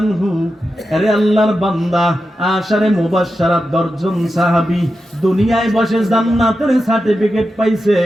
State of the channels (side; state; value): both; normal; correlation 0.90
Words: আনহু, আরে আল্লাহর বান্দা, আশারে মুবাশশারাত 10 জন সাহাবী দুনিয়ায় বসে জান্নাতের সার্টিফিকেট পাইছে,